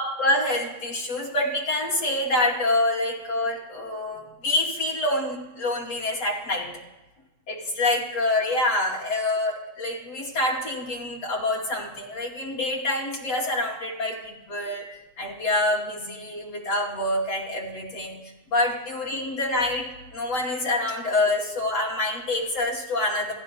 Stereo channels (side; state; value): right; late; 8.0 ms